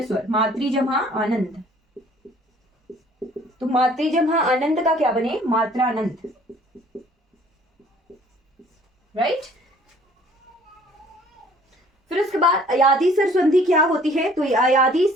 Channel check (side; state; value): both; normal; correlation 0.55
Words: स्वर, मातृ जमा आनंद, तो मातृ जमा आनंद का क्या बने, मात्रानंद, राइट। फिर उसके बाद अयादी स्वर संधि क्या होती है, तो अयादी